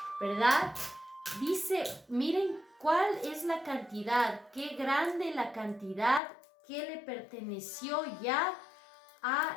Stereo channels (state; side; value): drops out; right; at 6.2 s